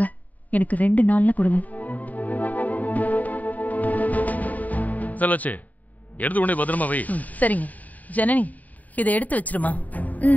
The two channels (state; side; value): late; right; 0.076 ms